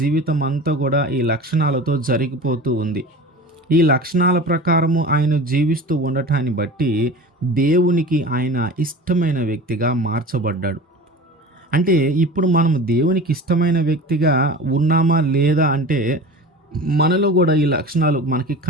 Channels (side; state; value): both; normal; correlation 0.35